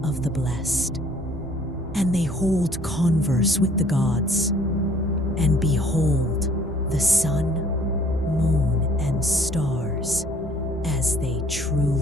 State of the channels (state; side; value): normal; both; correlation 0.58